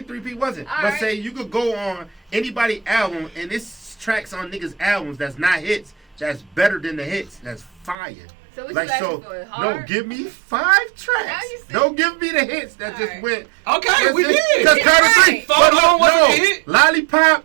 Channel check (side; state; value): left; drops out; at 8.0 s